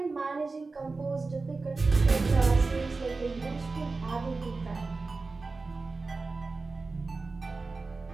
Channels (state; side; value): quieter; left; 3.8 dB